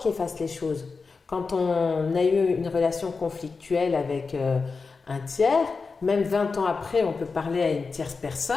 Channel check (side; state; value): right; quieter; 4.5 dB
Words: efface les choses. Quand on a eu une relation conflictuelle avec un tiers, même 20 ans après, on peut parler à une tierce